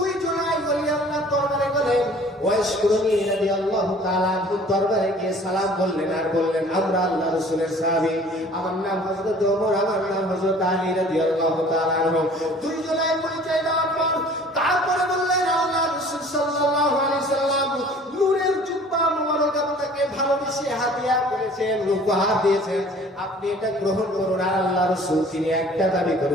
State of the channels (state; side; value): normal; both; correlation 0.50